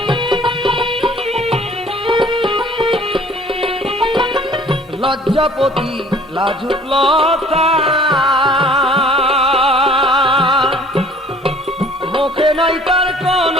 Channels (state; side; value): normal; both; correlation 0.53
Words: লজ্জাপতি লাজুক লতা মুখে নাই তার